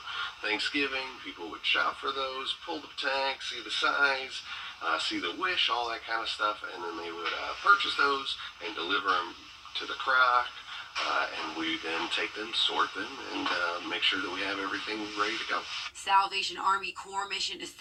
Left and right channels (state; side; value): identical; both; correlation 1.00